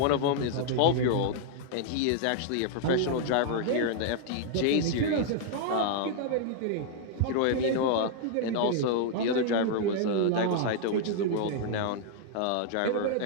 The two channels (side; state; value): both; different; correlation -0.01